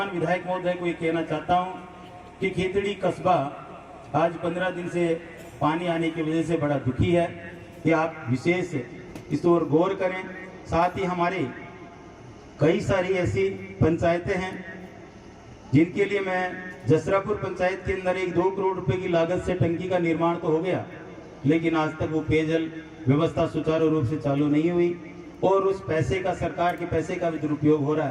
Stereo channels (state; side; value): identical; both; correlation 1.00